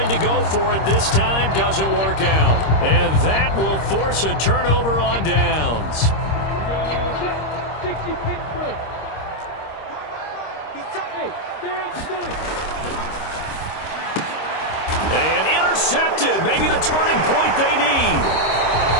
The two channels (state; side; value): late; right; 26 ms